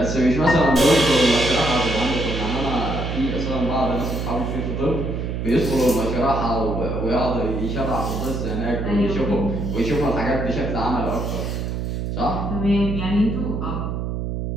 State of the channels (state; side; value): noise; right; hum, 3 dB below the sound